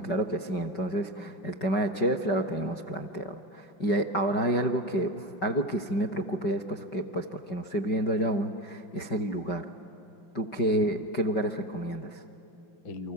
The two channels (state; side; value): late; right; 5.3 ms